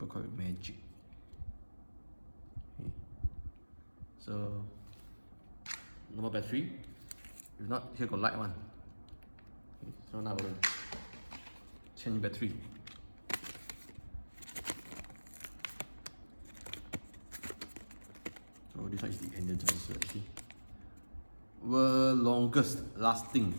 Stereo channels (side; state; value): both; inverted; correlation -1.00